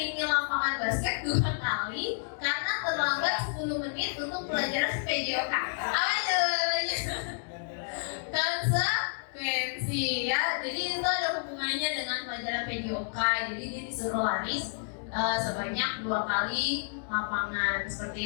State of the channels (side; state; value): right; silent; digital silence